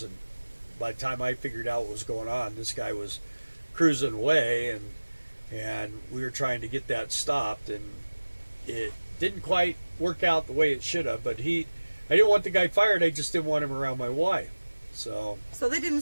By the time I figured out what was going on, this guy was cruising away, and we were trying to get that stopped, and it didn't quite work out the way it should have. But I didn't want the guy fired. I just didn't want him around my wife. So they didn't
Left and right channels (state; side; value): inverted; both; correlation -1.00